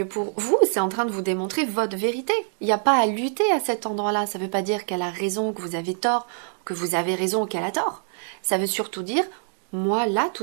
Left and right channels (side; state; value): left; silent; digital silence